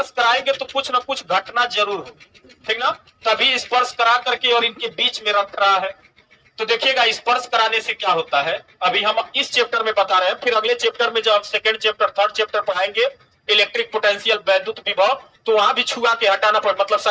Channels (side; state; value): both; identical; correlation 1.00